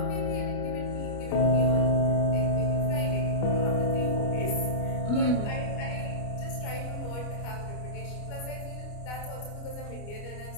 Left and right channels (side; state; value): right; late; 29 ms